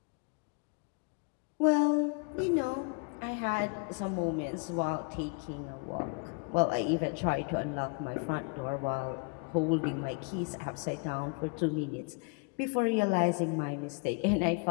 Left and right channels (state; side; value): quieter; right; 35.8 dB